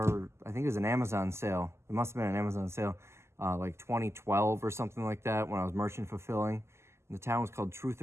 I think it was an Amazon sale. It must have been an Amazon sale, like 2012 or something like that, when I was merchant fulfilling. And the town was called Truth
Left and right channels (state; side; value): late; left; 0.13 ms